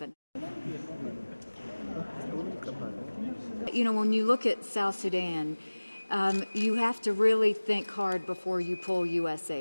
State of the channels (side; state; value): both; inverted; correlation -1.00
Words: You know, when you look at South Sudan, you have to really think hard before you pull U.S.